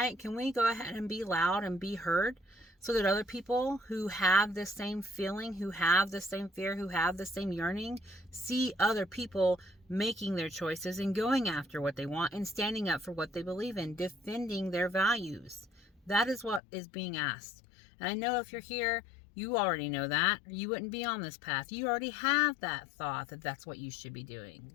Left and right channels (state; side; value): drops out; right; at 16.6 s